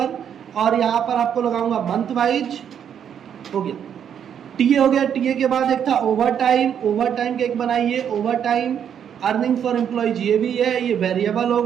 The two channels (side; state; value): left; quieter; 8.6 dB